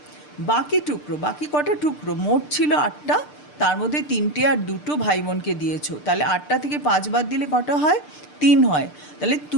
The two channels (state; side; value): late; right; 6.7 ms